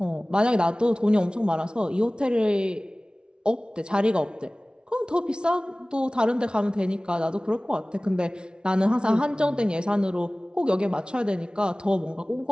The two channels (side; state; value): left; late; 0.055 ms